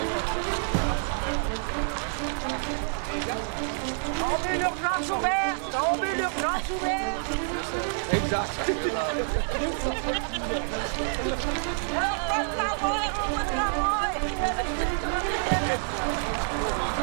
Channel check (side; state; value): left; silent; 56 dB below the other